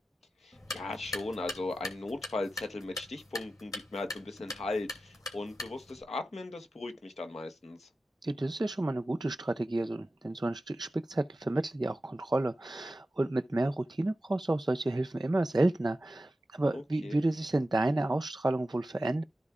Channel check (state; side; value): normal; both; correlation 0.94